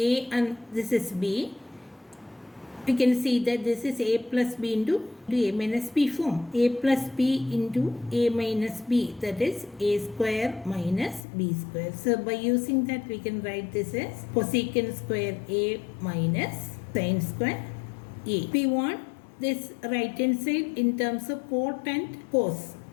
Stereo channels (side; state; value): right; drops out; at 11.2 s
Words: and this is B, we can see that this is A plus B into A minus B form. A plus B into A minus B, that is A square minus B square. So by using that we can write this as cosecant square A minus sin square A. We want this right hand side in terms of cot and cos.